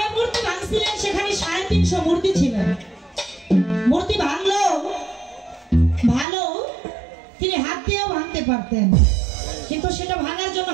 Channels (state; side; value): drops out; left; at 6.2 s